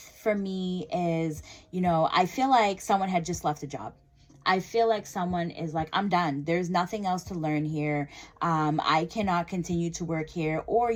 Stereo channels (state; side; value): identical; both; correlation 1.00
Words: for me is, you know, I feel like someone had just left a job. I feel like someone is like, I'm done. There's nothing else to learn here. I cannot continue to work here. Or